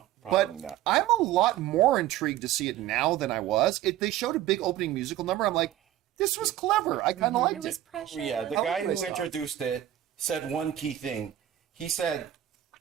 probably But not. I'm a lot more intrigued to see it now than I was. They showed a big opening musical number. I'm like, this was clever. I kind of liked It was it. precious. Yeah, the How guy would I who stop? introduced it said one key thing. He said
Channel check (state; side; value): quieter; left; 12.9 dB